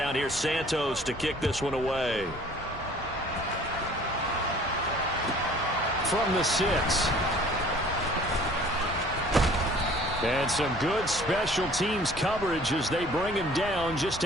here's Santos to kick this one away. From the 6. And some good special teams coverage as they bring him down just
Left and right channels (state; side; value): normal; both; correlation 0.52